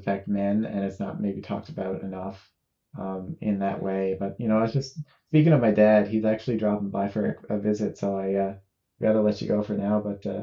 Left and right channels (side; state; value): both; identical; correlation 1.00